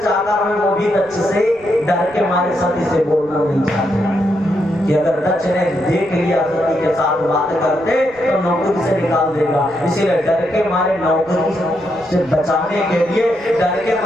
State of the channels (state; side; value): noise; right; rumble, 25 dB below the sound